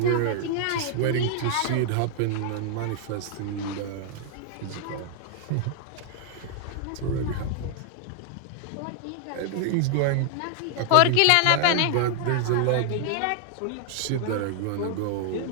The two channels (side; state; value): both; different; correlation 0.00